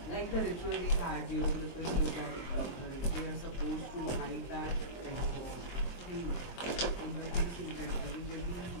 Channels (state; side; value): late; right; 23 ms